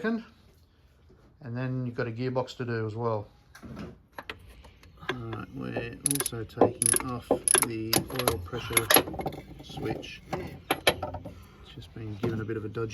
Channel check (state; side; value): identical; both; correlation 1.00